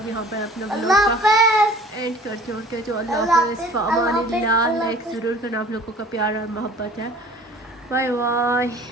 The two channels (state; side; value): normal; both; correlation 0.48